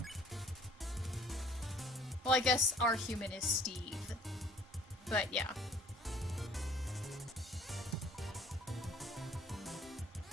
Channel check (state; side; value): normal; both; correlation 0.55